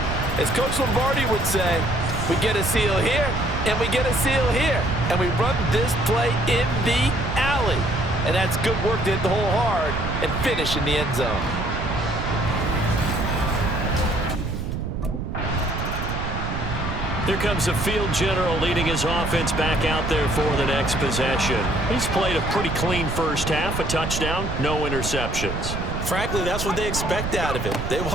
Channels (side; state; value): right; noise; rumble, 4 dB below the sound